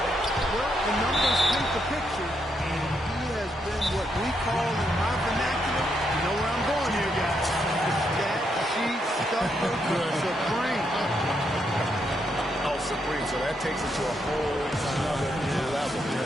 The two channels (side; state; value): both; normal; correlation 0.78